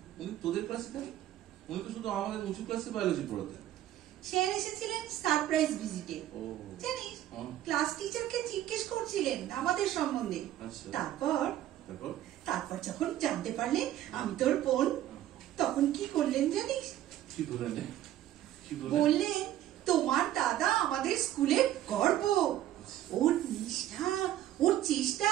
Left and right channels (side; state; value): left; quieter; 12.9 dB